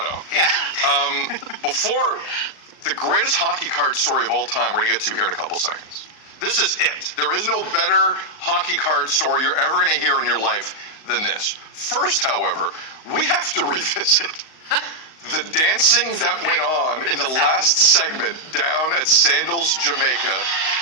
Yeah. Before the greatest hockey card story of all time, we're going to get to here in a couple seconds. This is it. There is no better hockey card story you're ever going to hear in your life than this. First, however, we have to revisit the dancing that went on in the last segment down at Sandals, Jamaica.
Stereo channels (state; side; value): late; right; 38 ms